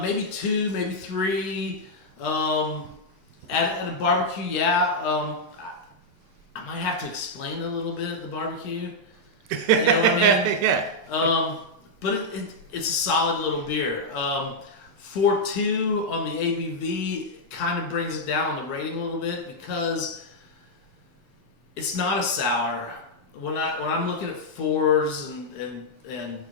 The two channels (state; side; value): late; left; 1.0 ms